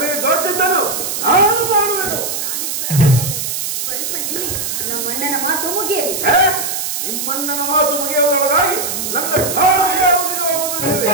ದೋಚಿದ್ದನು ನಾನು ಮಾಡುವೆನು. ಸ್ವಲ್ಪ ನಿಲ್ಲಿ, ನಮ್ಮಣ್ಣನ ಮಾತು ಮುಗಿಯಲಿ. ನಿಮ್ಮಣ್ಣನ ಮಾತು ಮುಗಿಯುವುದರೊಳಗಾಗಿ ನನ್ನ ಕಾಲಿಗೆ ಮುಗಿದು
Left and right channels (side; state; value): right; noise; hiss, 3 dB below the sound